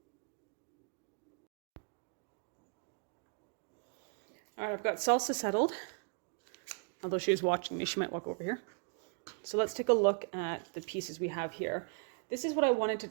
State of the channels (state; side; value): quieter; left; 39.6 dB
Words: All right, I've got salsa settled. Although she was watching me, she might walk over here. So let's take a look at the pieces we have here. This is what I wanted to